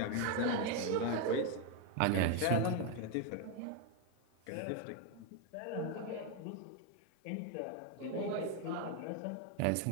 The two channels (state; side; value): different; both; correlation 0.01